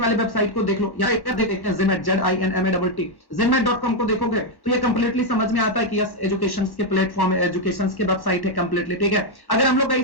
वेबसाइट को देख लो, यहाँ एक देखते हैं Zinmat, ZINMATT, zinmat.com को देखोगे तो ये कंप्लीटली समझ में आता है कि यस एजुकेशन के प्लेटफॉर्म है, एजुकेशन के वेबसाइट है कंप्लीटली, ठीक है। अगर हम लोग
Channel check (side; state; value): right; late; 1.1 ms